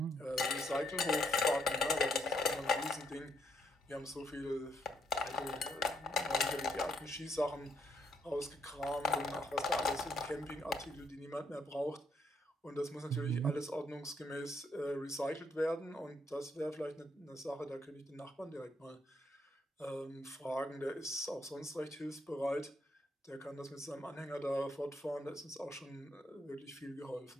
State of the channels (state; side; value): normal; both; correlation 0.74